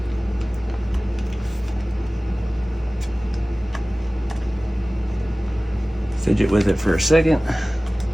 Fidget with it for a second.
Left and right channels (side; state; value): both; normal; correlation 0.97